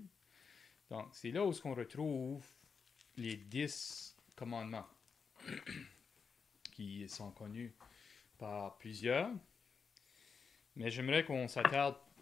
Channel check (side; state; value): right; quieter; 5.6 dB